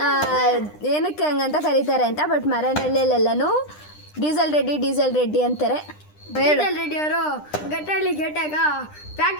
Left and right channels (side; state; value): right; late; 9.9 ms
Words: ಏನಕ್ಕೆ ಹಂಗಂತ ಕರೀತಾರೆ ಅಂತ. ಬಟ್ ಮಾರೇನಹಳ್ಳಿಯಲ್ಲೆಲ್ಲನೂ ಡೀಸೆಲ್ ರೆಡ್ಡಿ ಅಂತಾರೆ. ಡೀಸೆಲ್ ರೆಡ್ಡಿ ಅವರು ಗಟ್ಟಳ್ಳಿ ಗೇಟಾಗ